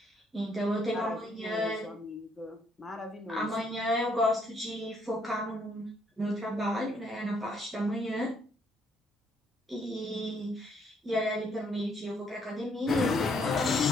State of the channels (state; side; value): normal; both; correlation 0.70